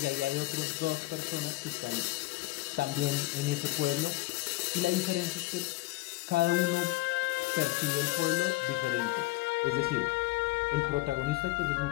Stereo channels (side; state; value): right; quieter; 19.8 dB